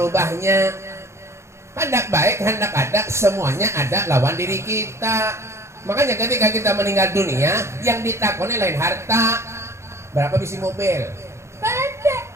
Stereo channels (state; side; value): late; left; 0.13 ms